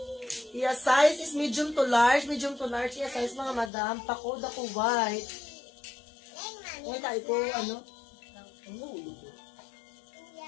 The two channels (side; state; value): right; drops out; at 3.7 s